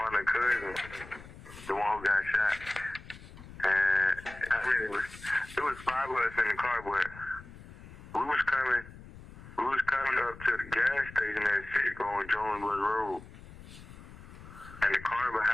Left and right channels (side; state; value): left; noise; rumble, 17 dB below the sound